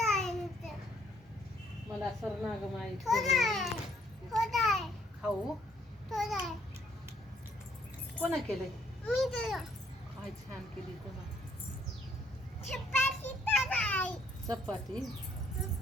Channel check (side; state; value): both; normal; correlation 0.66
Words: मला सरनाग माहित खाऊ. कोणा केले? काय छान केली कोणा. चपाती.